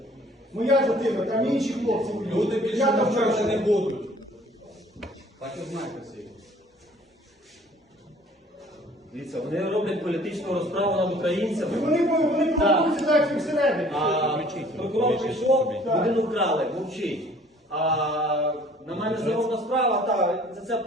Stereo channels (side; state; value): both; normal; correlation 0.54